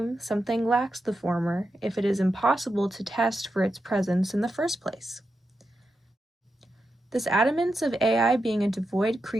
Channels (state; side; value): normal; both; correlation 0.88